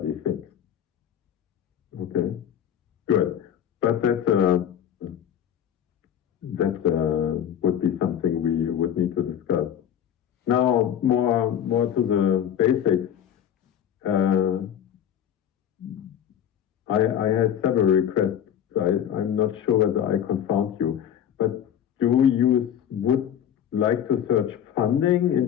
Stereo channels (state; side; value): quieter; right; 9.6 dB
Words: thinks. Okay, good. But that would be something we would need to discuss. Now, more to the basics. I had several requests. I'm not sure whether I confound you, but would like to search funding